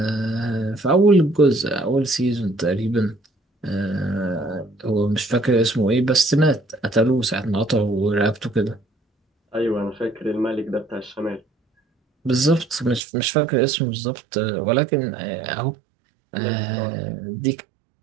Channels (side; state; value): left; drops out; at 13.0 s